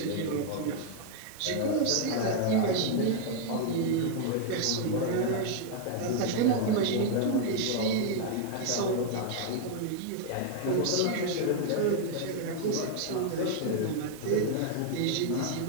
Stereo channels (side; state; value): both; different; correlation 0.00